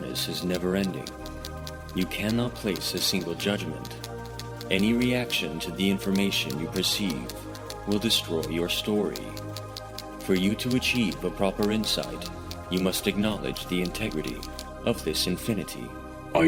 is never-ending. You cannot place a single judgment. Any reaction to the information you perceive will destroy your story. For you to achieve a proper insight, you must acknowledge the integrity of this infinity. I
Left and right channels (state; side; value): identical; both; correlation 1.00